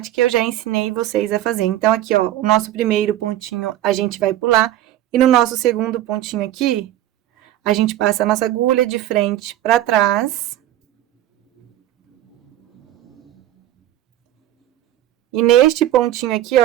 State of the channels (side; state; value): left; quieter; 13.3 dB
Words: que eu já ensinei vocês a fazer. Então, aqui, ó, o nosso primeiro pontinho a gente vai pular. E no nosso segundo pontinho aqui, a gente passa a nossa agulha de frente para trás. E neste pontinho aqui,